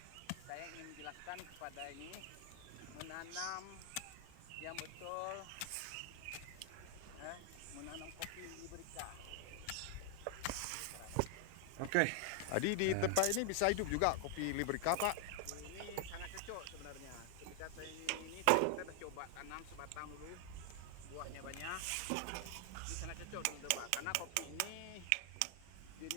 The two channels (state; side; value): different; both; correlation 0.00